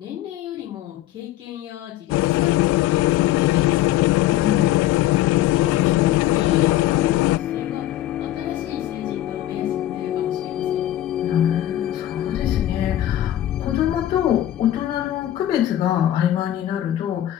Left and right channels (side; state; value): right; quieter; 13.4 dB